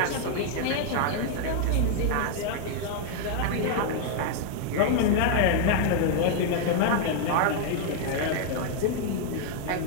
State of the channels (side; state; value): both; different; correlation 0.00